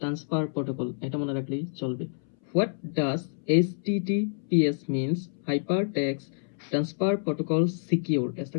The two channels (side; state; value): right; silent; 59 dB below the other